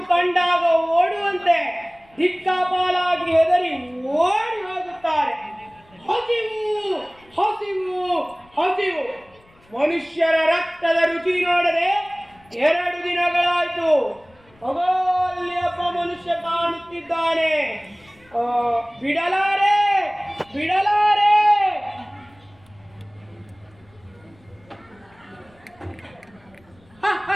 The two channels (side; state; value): left; noise; rumble, 30 dB below the sound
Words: ಕಂಡಾಗ ಓಡುವಂತೆ ದಿಕ್ಕಾಪಾಲಾಗಿ ಹೆದರಿ ಓಡಿ ಹೋಗುತ್ತಾರೆ. ಹಸಿವು ಹಸಿವು ಹಸಿವು. ಮನುಷ್ಯರ ರಕ್ತದ ರುಚಿ ನೋಡದೆ 2 ದಿನಗಳಾಯ್ತು. ಅಲ್ಲಿ ಒಬ್ಬ ಮನುಷ್ಯ ಕಾಣುತ್ತಿದ್ದಾನೆ. ಬಿಡಲಾರೆ ಬಿಡಲಾರೆ.